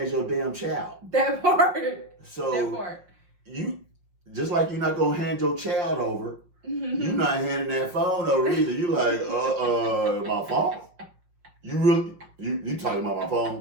as your damn child. That part. So that part. You, just like you're not going to hand your child over, you're not handing that phone over either. You like, my phone? You talking about my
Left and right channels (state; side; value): late; left; 5.6 ms